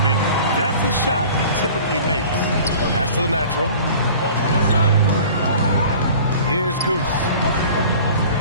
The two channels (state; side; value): inverted; both; correlation -0.44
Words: mean, that's a shot he typically makes. Pass to the natural. Here's Goose.